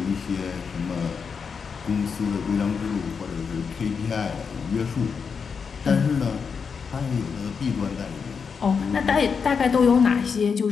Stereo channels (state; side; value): quieter; right; 5.9 dB